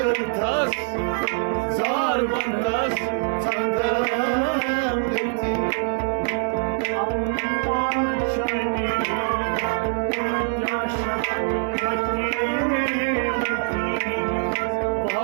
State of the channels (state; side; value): silent; left; 63 dB below the other